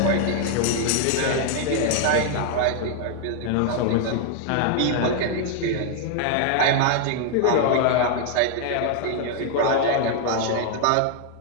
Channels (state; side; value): different; both; correlation 0.00